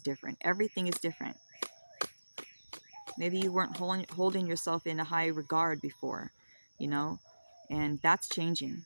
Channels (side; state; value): both; inverted; correlation -1.00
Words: Everything is different. Maybe you weren't holding yourself in a high regard before, you know, and that's changing.